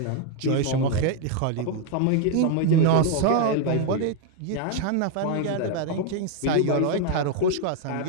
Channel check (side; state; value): both; different; correlation 0.01